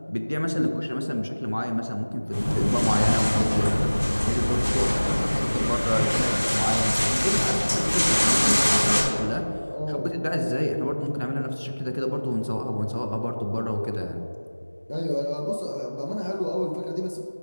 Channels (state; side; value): inverted; both; correlation -1.00